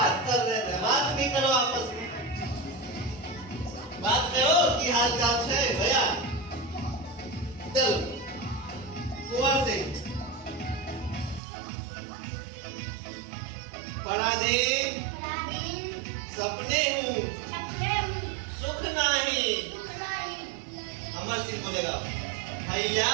कर रहे थे, बात भी करो आपस में, बात करो कि हाल चाल है भैया। चलो कुंवर सिंह पराधीन सपने हूँ, सुख नहीं। अमर सिंह बोलेगा भैया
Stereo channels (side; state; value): left; drops out; at 11.4 s